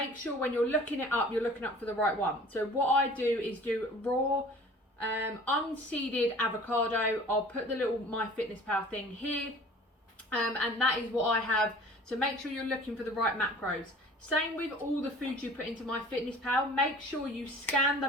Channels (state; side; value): normal; both; correlation 0.46